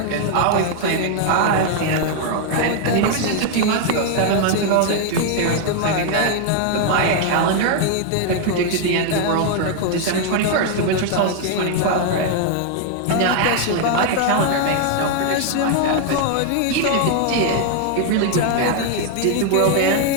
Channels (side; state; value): both; different; correlation 0.00